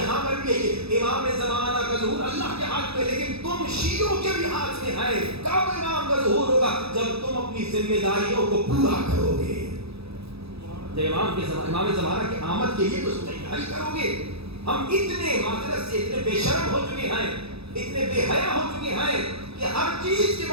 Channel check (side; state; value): left; late; 0.78 ms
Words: پر بھی یہی امام زمانہ کا ظہور اللہ کے ہاتھ میں, لیکن تم شیعوں کے بھی ہاتھ میں ہے. کب امام کا ظہور ہوگا؟ جب تم اپنی ذمہ داریوں کو پورا کرو گے. جب امام زمانہ کی آمد کے لیے کچھ تیاری کرو گے. ہم اتنے معذرت سے اتنے بے شرم ہو چکے ہیں, اتنے بے حیا ہو چکے ہیں کہ ہر چیز کے